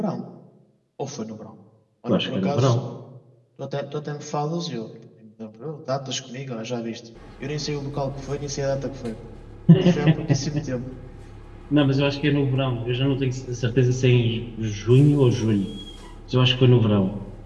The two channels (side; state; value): both; identical; correlation 1.00